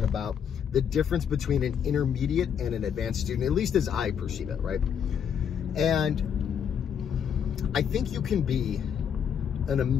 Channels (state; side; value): quieter; right; 7.9 dB